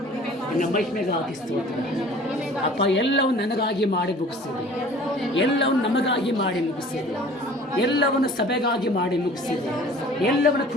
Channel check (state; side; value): normal; both; correlation 0.48